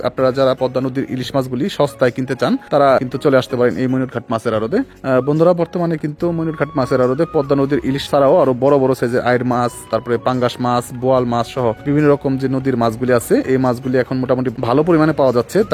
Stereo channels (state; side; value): identical; both; correlation 1.00